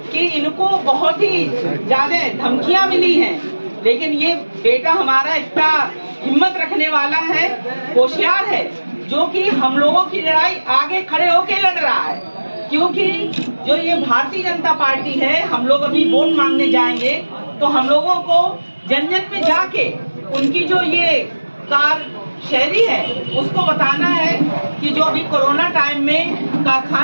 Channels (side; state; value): both; inverted; correlation -1.00